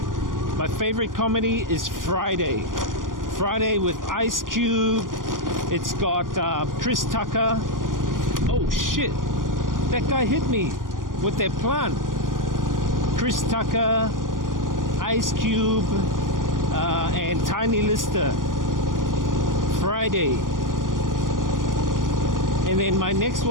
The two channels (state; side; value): late; left; 0.90 ms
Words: My favorite comedy is Friday. Friday with Ice Cube. It's got Chris Tucker. Oh shit, that guy hit me with that plant. Chris Tucker, Ice Cube, and Tiny Lister. Friday. And then my next